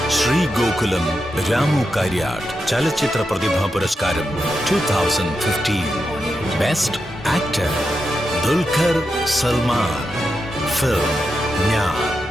ശ്രീ ഗോകുലം രാമു കാര്യാട്ട് ചലച്ചിത്ര പ്രതിഭാ പുരസ്കാരം 2015. Best actor Dulquer Salman. Film ഞാൻ.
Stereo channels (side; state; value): both; normal; correlation 0.87